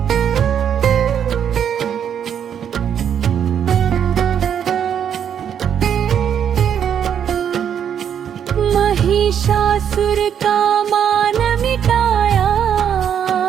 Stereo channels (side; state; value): left; quieter; 8.6 dB